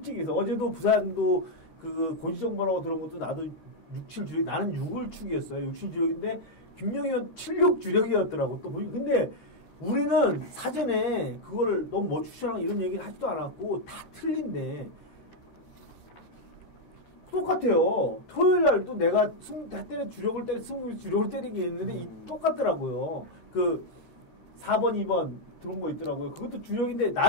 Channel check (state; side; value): late; right; 13 ms